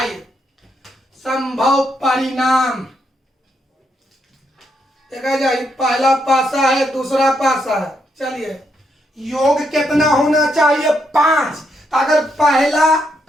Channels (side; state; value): both; normal; correlation 0.78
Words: संभव परिणाम देखा जाए, पहला पासा है दूसरा पासा है। चलिए योग कितना होना चाहिए, 5। अगर पहला